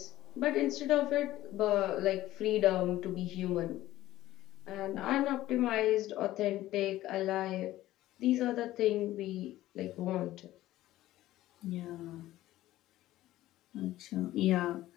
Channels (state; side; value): quieter; right; 15.3 dB